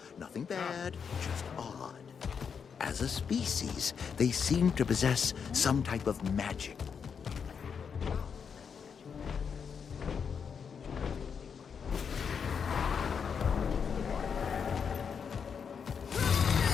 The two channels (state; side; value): quieter; right; 6.6 dB